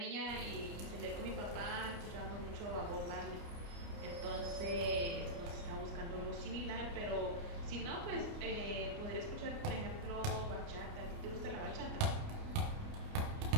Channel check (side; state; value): left; late; 29 ms